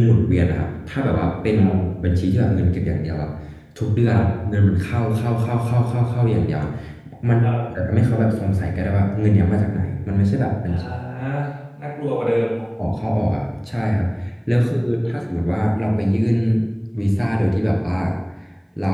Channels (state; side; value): identical; both; correlation 1.00